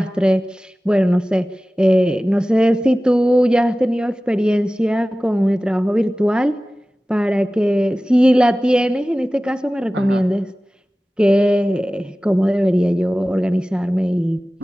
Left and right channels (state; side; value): normal; both; correlation 0.97